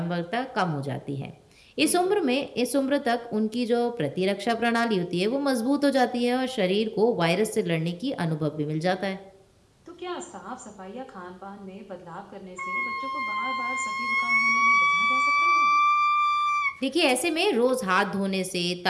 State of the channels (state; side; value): identical; both; correlation 1.00